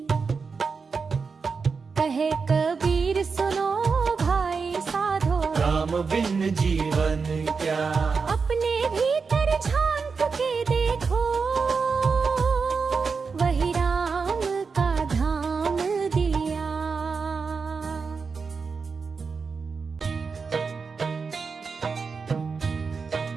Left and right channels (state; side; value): quieter; left; 5.1 dB